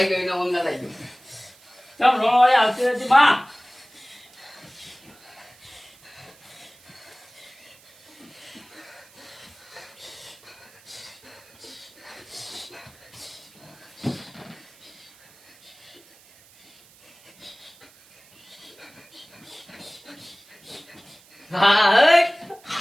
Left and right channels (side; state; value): right; noise; hiss, 26 dB below the sound